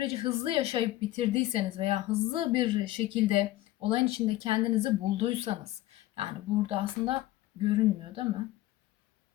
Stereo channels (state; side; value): quieter; right; 16.1 dB